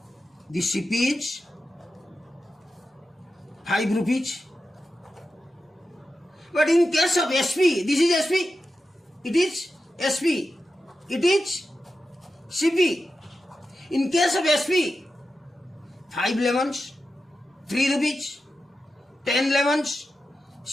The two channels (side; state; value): both; normal; correlation 0.91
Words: the CP is 5 rupees. But in case of SP, this is SP, it is SP, it is CP. In case of SP, 5 lemons, 3 rupees, 10 lemons,